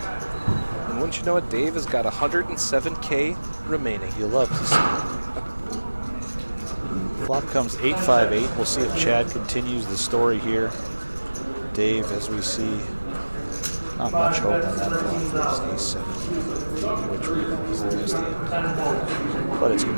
And wouldn't you you know what? Dave has got 107K remaining. You love to see it. Flop comes 8-5-8. We'll see if Chad continues the story here. Dave, as we see, not much hope on that flop for his ace-7, which we know is the best hand. But it's going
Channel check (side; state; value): both; inverted; correlation -1.00